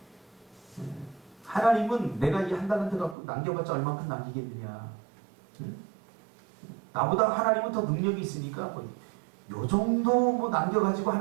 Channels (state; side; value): drops out; left; at 3.2 s